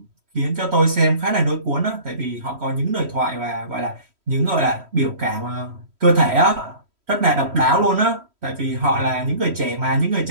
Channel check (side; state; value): left; late; 3.1 ms